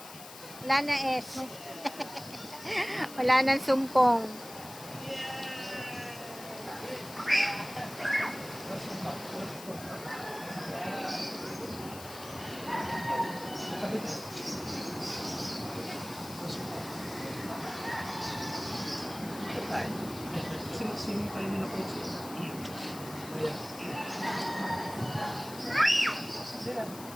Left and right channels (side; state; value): left; noise; hiss, 14 dB below the sound